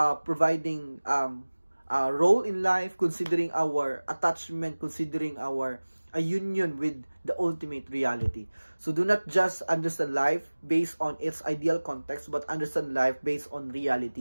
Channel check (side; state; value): both; inverted; correlation -1.00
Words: providing a role in life, considering our attachment, considering our a union with the ultimate reality. So do not just understand life based on its ideal context, but understand life based on